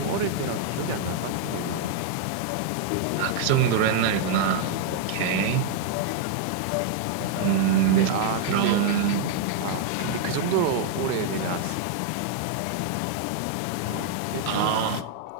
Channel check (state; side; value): different; both; correlation 0.00